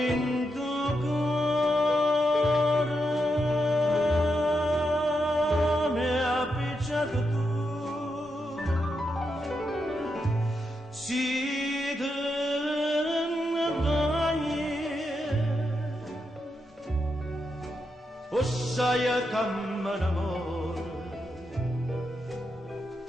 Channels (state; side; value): normal; both; correlation 0.84